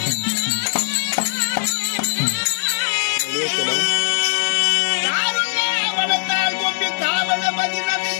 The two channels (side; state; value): right; silent; 66 dB below the other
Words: வளர்த்தால் கொண்டு காவல மதினம்